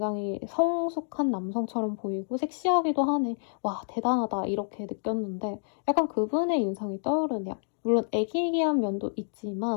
성숙한 남성처럼 보이고 섹시하기도 하네. 와 대단하다 이렇게 느꼈는데 약간 그분의 인상이 떠오르네요. 물론 애기애기한 면도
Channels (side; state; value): right; silent; digital silence